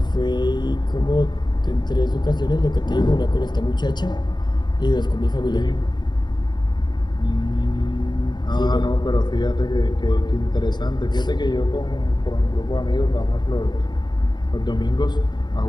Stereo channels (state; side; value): late; right; 0.21 ms